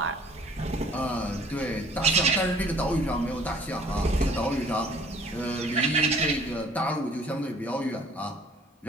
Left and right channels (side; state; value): both; normal; correlation 0.54